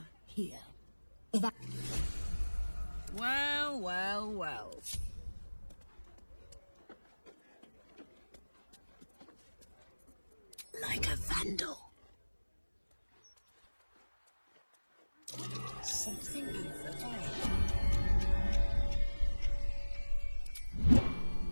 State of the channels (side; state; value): both; inverted; correlation -1.00